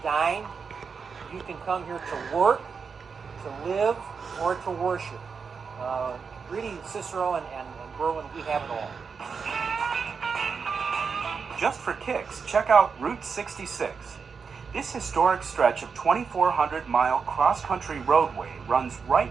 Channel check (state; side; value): quieter; left; 5.6 dB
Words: dine. You can come here to work, to live, or to worship. Really, Cicero and Berwyn, we have it all. Just for kicks, check out Route 66. This historic stretch of 2,400-mile cross-country roadway runs right